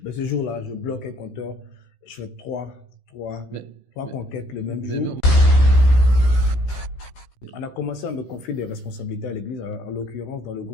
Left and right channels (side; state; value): right; late; 16 ms